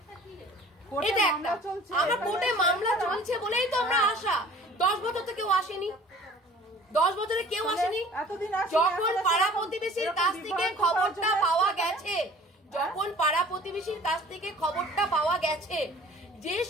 এটা একটা আমরা কোর্টে মামলা চলছে বলেই তো আমরা আশা। 10 বছর তো কেউ আসেনি, 10 বছরে কেউ আসেনি। যখন পাড়া প্রতিবেশীর কাছ থেকে খবরটা পাওয়া গেছে, যখন পাড়া প্রতিবেশীর কাছ থেকে খবরটা পাওয়া গেছে যে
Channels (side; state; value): both; normal; correlation 0.48